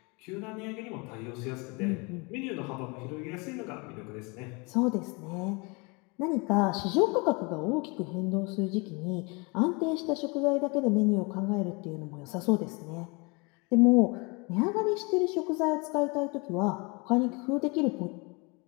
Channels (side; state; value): right; quieter; 29.1 dB